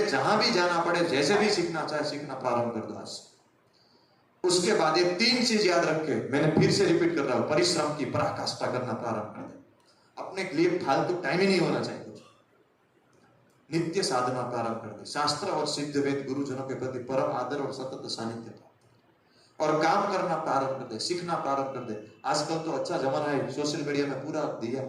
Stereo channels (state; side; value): identical; both; correlation 1.00